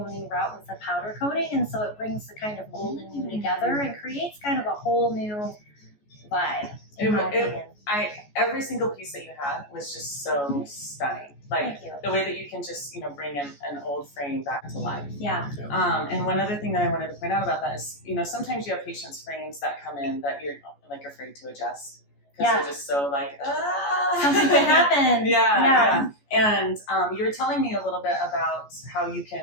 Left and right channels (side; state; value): right; late; 14 ms